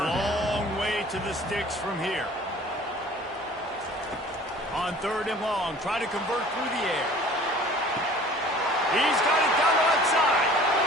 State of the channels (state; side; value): normal; both; correlation 0.48